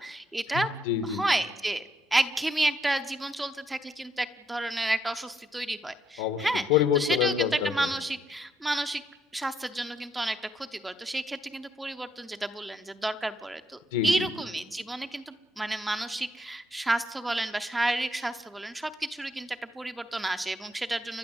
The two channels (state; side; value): normal; both; correlation 0.74